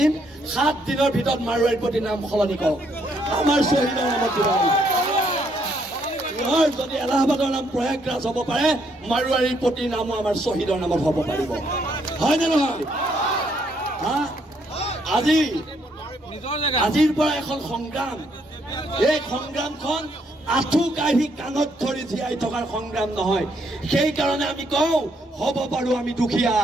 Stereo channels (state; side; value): normal; both; correlation 0.72